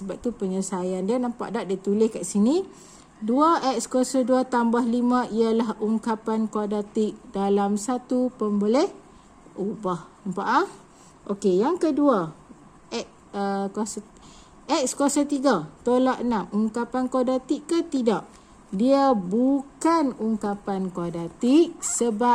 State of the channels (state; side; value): identical; both; correlation 1.00